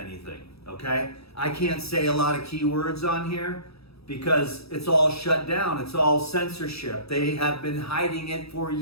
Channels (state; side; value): late; right; 0.77 ms